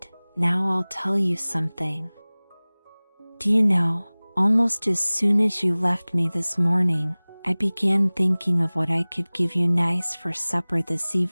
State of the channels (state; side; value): inverted; both; correlation -1.00